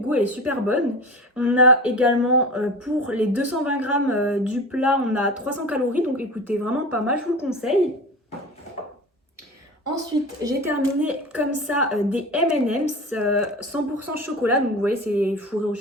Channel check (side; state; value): both; normal; correlation 0.32